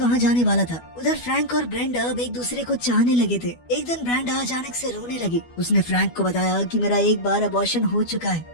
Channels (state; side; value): late; right; 12 ms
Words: जाने वाला था। उधर फ्रैंक और ब्रेंडा अब एक दूसरे को चाहने लगे थे। एक दिन ब्रेंडा अचानक से रोने लगी। उसने फ्रैंक को बताया कि मेरा एक बार अबॉर्शन हो चुका है,